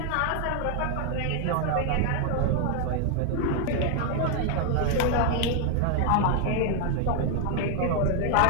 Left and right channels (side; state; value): both; different; correlation 0.00